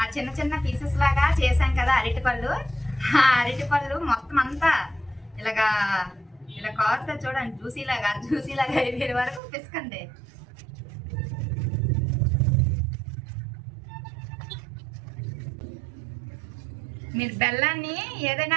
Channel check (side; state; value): left; drops out; at 9.4 s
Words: ఆ చిన్న చిన్న పీసెస్ లాగా చేసాం కదా అరటిపళ్ళు, ఆ అరటిపళ్ళు మొత్తం అంతా ఇలాగా ఇలా కారుతో చూడండి, జ్యూసీలాగా అయిపోయే వరకు పిసకండి. మీరు బెల్లాన్ని